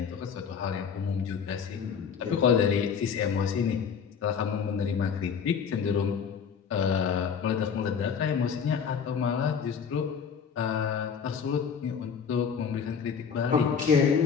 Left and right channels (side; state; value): right; quieter; 6.7 dB